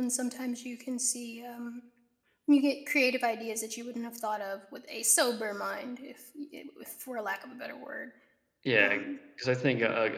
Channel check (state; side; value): identical; both; correlation 1.00